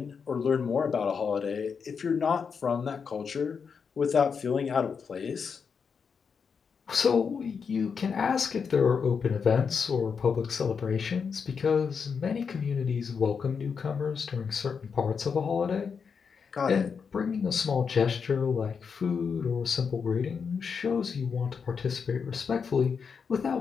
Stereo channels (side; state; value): right; quieter; 6.0 dB